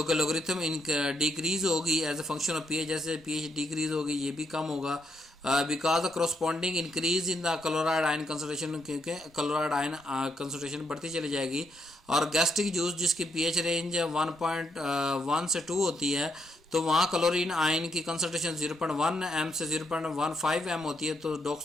कि लोगरिथम इन डिक्रीज होगी as a function of pH. जैसे पीएच डिक्रीज होगी ये भी कम होगा because the corresponding increase in the chloride ion concentration, क्योंकि क्लोराइड आयन कंसंट्रेशन बढ़ती चली जाएगी। और गैस्ट्रिक जूस जिसकी पीएच रेंज 1.1 से 2 होती है, तो वहाँ क्लोरीन आयन की कंसंट्रेशन 0.1 m से 0.15 m होती है। तो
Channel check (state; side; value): normal; both; correlation 0.77